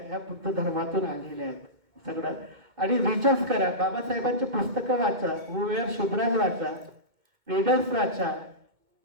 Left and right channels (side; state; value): left; late; 2.2 ms